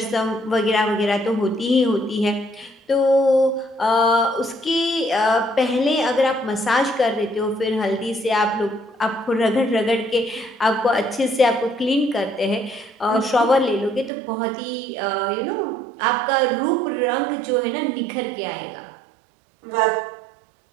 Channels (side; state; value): left; drops out; at 14.1 s